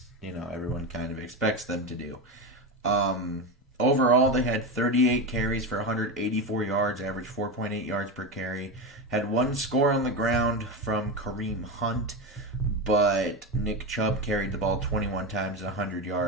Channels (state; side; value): normal; both; correlation 0.18